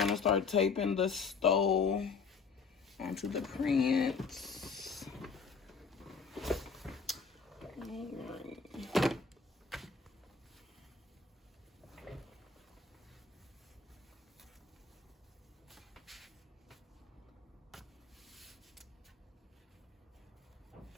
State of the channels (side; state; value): right; quieter; 5.1 dB